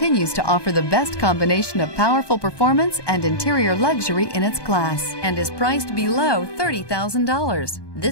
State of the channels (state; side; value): late; right; 1.2 ms